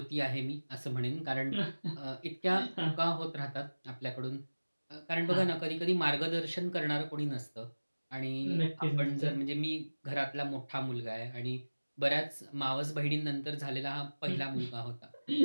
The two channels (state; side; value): inverted; both; correlation -1.00